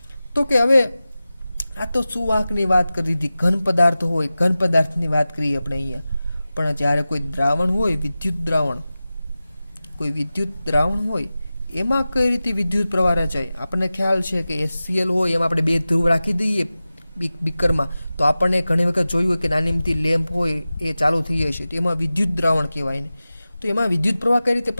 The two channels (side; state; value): both; inverted; correlation -0.96